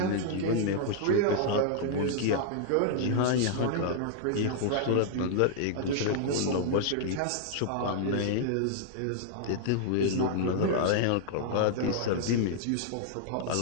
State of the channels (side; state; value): both; different; correlation -0.01